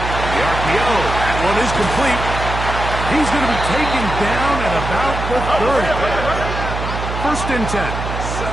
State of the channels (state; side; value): noise; right; hum, 5 dB below the sound